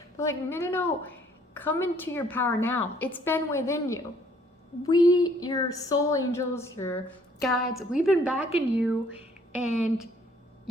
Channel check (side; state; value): both; normal; correlation 0.62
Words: But like, no. Come into your power now. It's been within you. Your soul angels, your guides, we've been backing you, and